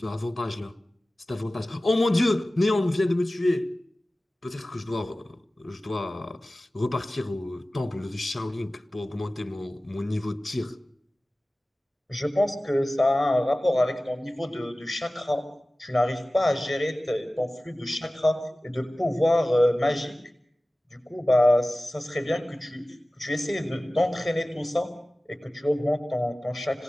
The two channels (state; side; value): normal; both; correlation 0.97